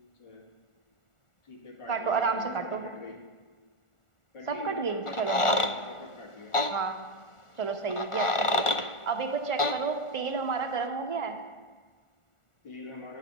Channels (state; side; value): late; right; 1.4 ms